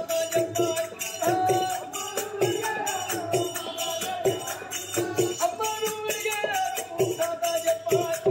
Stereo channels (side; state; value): both; identical; correlation 1.00